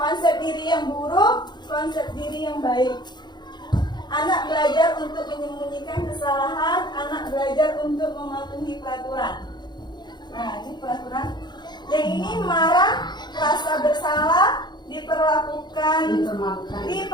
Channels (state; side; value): late; right; 0.21 ms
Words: diri yang buruk, konsep diri yang baik. Anak belajar untuk menyembunyikan kesalahan, anak belajar untuk mematuhi peraturan. Nah, ini peraturan. Yang ini marah, rasa bersalah, dipermalukan,